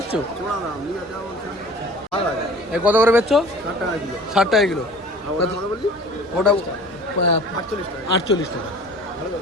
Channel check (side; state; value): both; normal; correlation 0.44